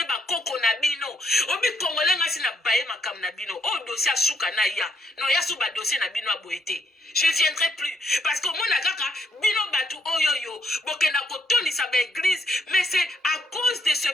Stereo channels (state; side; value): normal; both; correlation 0.74